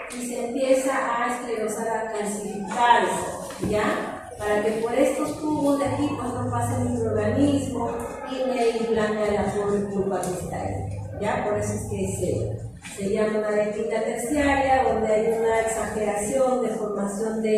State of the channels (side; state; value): both; identical; correlation 1.00